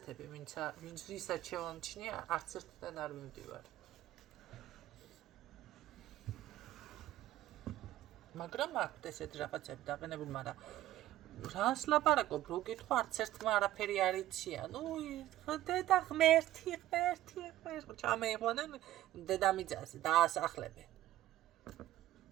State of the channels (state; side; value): quieter; left; 14.3 dB